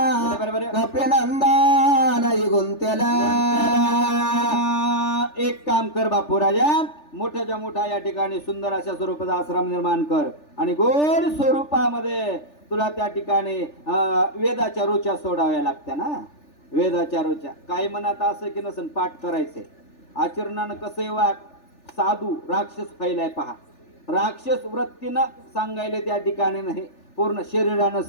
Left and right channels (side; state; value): right; late; 3.4 ms